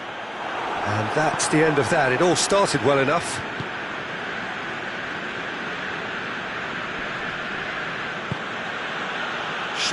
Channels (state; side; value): identical; both; correlation 1.00